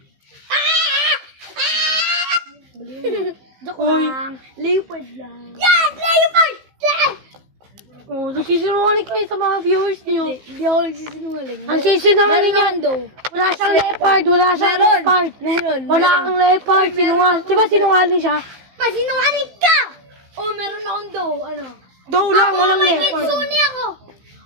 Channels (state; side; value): late; left; 15 ms